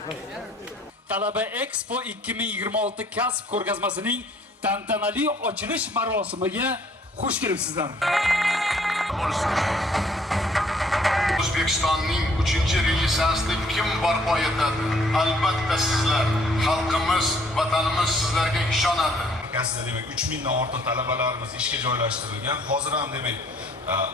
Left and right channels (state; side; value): normal; both; correlation 0.61